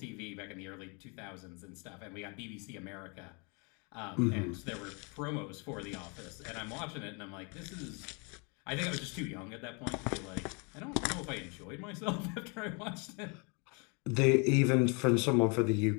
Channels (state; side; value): quieter; right; 33.2 dB